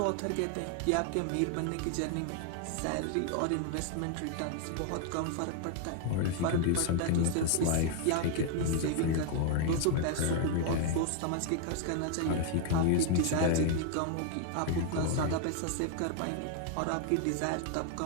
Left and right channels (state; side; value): different; both; correlation 0.00